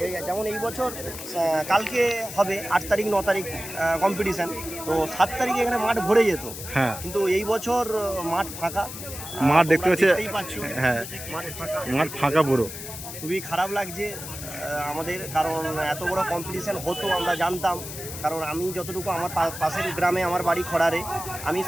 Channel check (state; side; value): noise; left; hiss, 10 dB below the sound